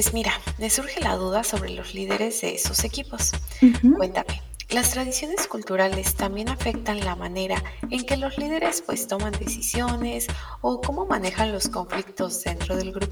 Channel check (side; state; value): both; identical; correlation 1.00